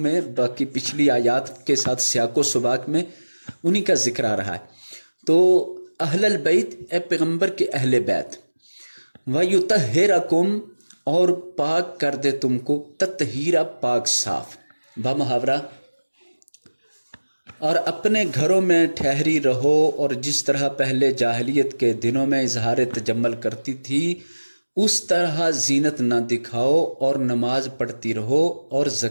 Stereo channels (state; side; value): inverted; both; correlation -1.00